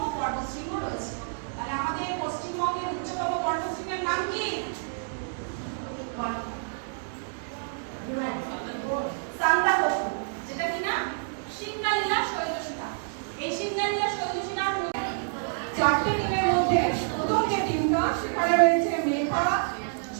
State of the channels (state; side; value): silent; left; digital silence